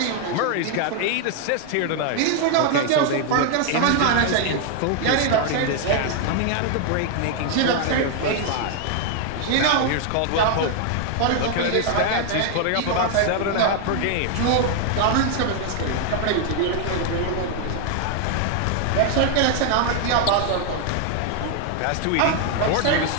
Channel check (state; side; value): different; both; correlation 0.00